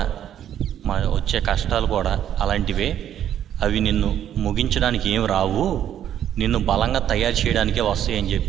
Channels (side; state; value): left; quieter; 10.4 dB